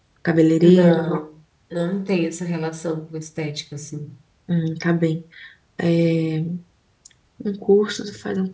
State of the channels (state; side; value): identical; both; correlation 1.00